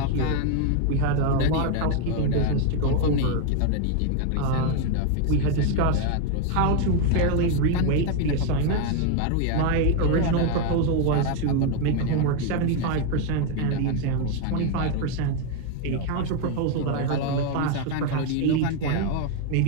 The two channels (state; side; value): different; both; correlation 0.01